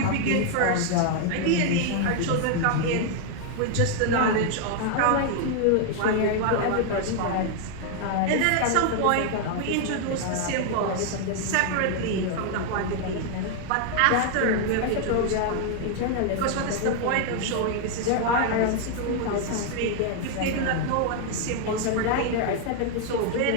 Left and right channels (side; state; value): both; different; correlation 0.00